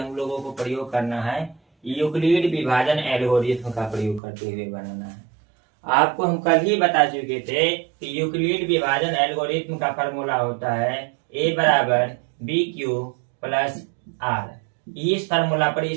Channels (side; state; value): left; drops out; at 4.2 s